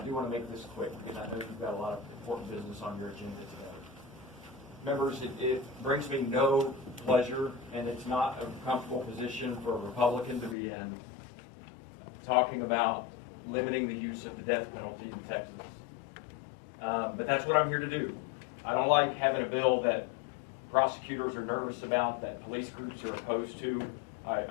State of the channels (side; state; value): right; drops out; at 10.6 s